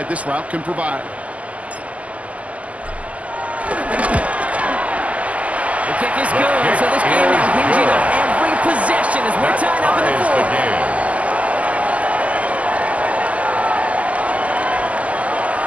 this route can provide. The kick is good, so this game now hinging on every possession as we're tied up in the fourth.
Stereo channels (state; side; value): late; left; 0.069 ms